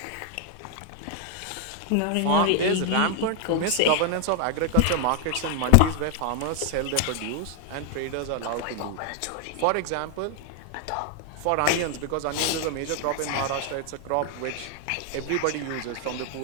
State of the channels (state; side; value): different; both; correlation 0.00